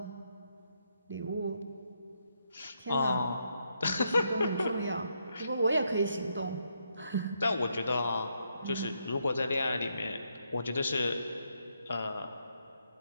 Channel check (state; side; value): inverted; both; correlation -0.77